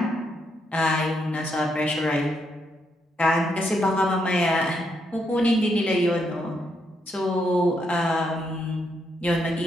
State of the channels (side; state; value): both; normal; correlation 0.78